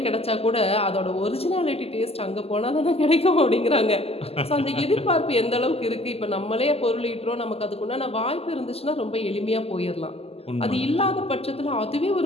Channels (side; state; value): right; late; 0.29 ms